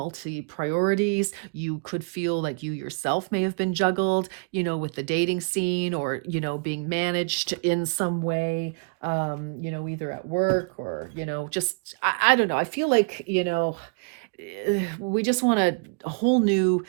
priorities. You could feel like you yourself may have been juggled, with the dating scene or, being managed in some way, either at work or, just, I don't know. I feel like, we just want a whole new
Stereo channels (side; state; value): left; quieter; 37.7 dB